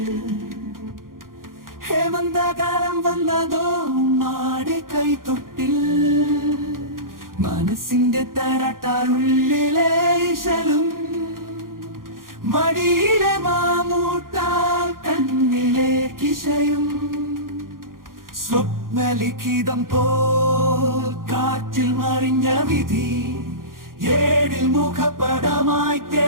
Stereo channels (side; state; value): left; late; 0.91 ms